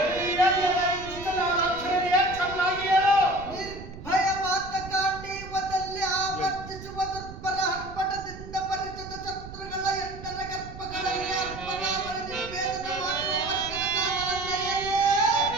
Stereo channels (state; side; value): noise; right; rumble, 13 dB below the sound